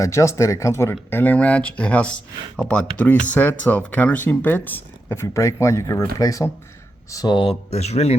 adjust it. It comes with an Allen wrench. It has about 3 sets of countersink bits. If you break one, you can replace them. So it's really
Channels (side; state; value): both; normal; correlation 0.88